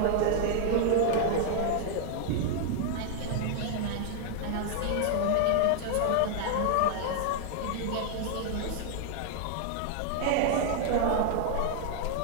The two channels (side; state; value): both; different; correlation 0.00